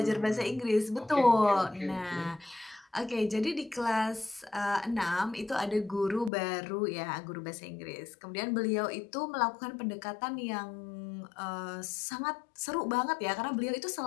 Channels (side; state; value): right; drops out; at 6.3 s